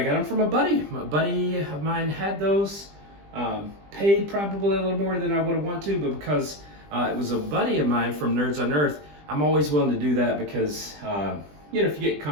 got them from a buddy. A buddy of mine had those, paid probably a little more than I would have wanted to, but because it was a buddy of mine from Nerds on Earth, I'm always willing to do that because, you know, if you get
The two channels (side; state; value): left; late; 20 ms